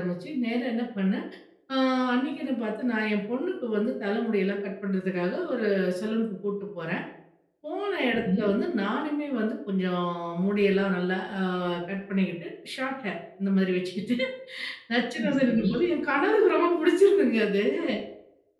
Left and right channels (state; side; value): identical; both; correlation 1.00